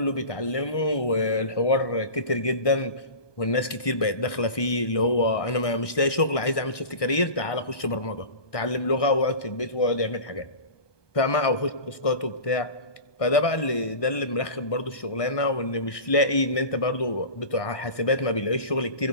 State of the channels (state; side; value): late; right; 1.6 ms